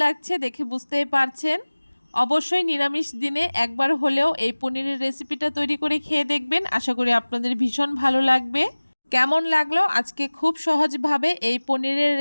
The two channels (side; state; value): both; inverted; correlation -1.00